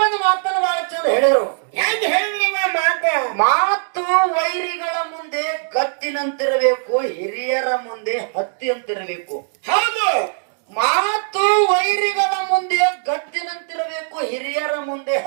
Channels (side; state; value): left; silent; digital silence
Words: ಒಂದು ಮಾತನ್ನು ಬಹಳ ಚಂದ ಹೇಳಿದ್ರು. ಹೆಂಗ್ ಹೇಳಿದ್ರವ ಮಾತು ವೈರಿಗಳ ಮುಂದೆ ಗತ್ತಿನಂತಿರಬೇಕು, ಹಿರಿಯರ ಮುಂದೆ ಹತ್ತಿಯಂತಿರಬೇಕು. ಹೌದು. ಮಾತು ವೈರಿಗಳ ಮುಂದೆ ಗಟ್ಟಿನಂತಿರಬೇಕು, ಹಿರಿಯರ ಮುಂದೆ